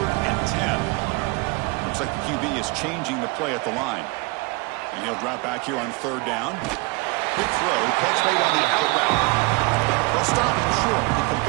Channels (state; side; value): quieter; left; 26.4 dB